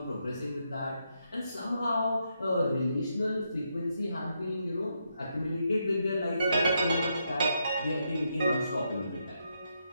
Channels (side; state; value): both; inverted; correlation -0.80